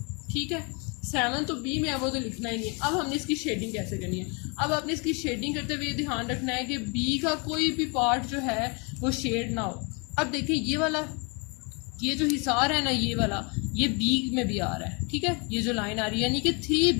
ठीक है, 7 तो बी में है, वो तो लिखना ही नहीं है। अब हमने इसकी शेडिंग कैसे करनी है, अब आपने इसकी शेडिंग करते हुए ध्यान रखना है कि बी का कोई भी पार्ट जो है वो शेड ना हो। अब देखिए ये वाला, ये जो हिसार है ना, ये वाला, ये बी में भी आ रहा है। ठीक है, ये जो लाइन आ रही है यानी कि 3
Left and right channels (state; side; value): quieter; right; 32.4 dB